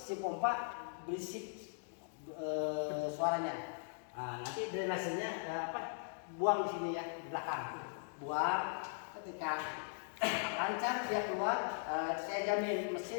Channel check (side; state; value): right; silent; digital silence